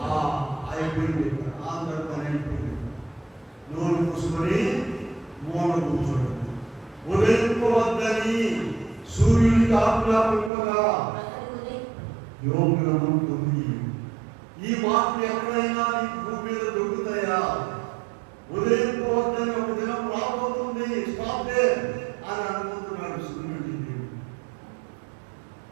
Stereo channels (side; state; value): left; drops out; at 10.5 s